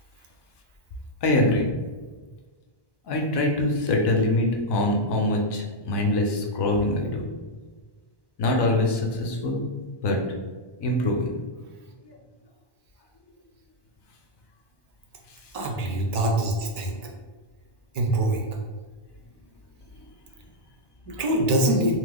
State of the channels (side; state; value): right; late; 1.1 ms